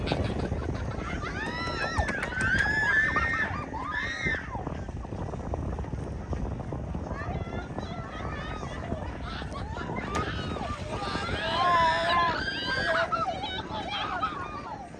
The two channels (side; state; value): both; identical; correlation 1.00